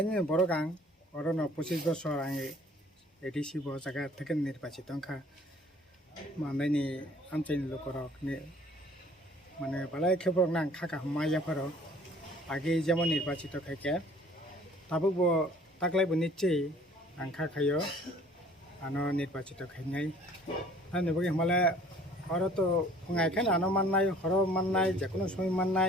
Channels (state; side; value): normal; both; correlation 0.53